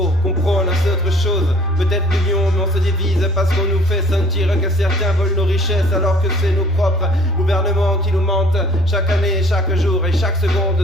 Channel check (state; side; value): normal; both; correlation 0.54